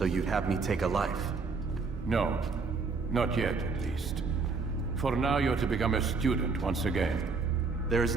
you'd have me take a life? No. Not yet, at least. For now, you're to become a student once again. There is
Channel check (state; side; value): quieter; left; 4.4 dB